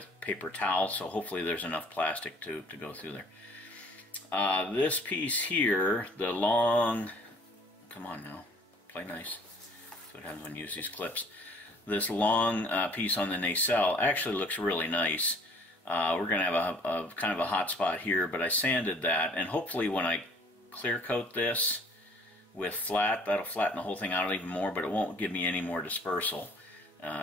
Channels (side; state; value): both; normal; correlation 0.54